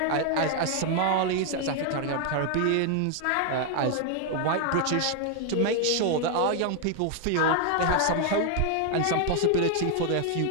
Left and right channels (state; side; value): different; both; correlation 0.00